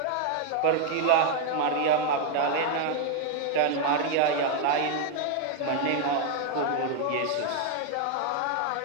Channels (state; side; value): different; both; correlation 0.01